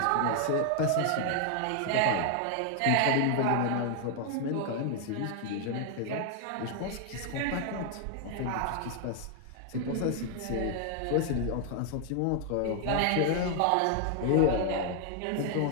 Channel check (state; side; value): different; both; correlation 0.00